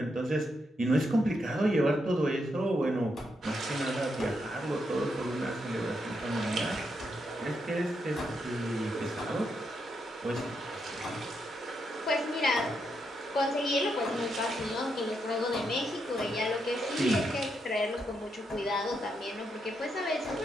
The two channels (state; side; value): normal; both; correlation 0.81